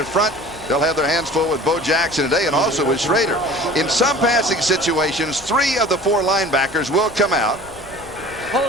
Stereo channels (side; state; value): left; noise; rumble, 21 dB below the sound